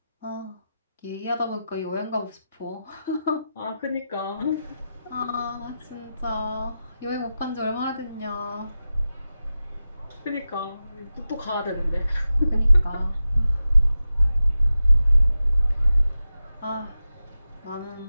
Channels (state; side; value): inverted; both; correlation -0.92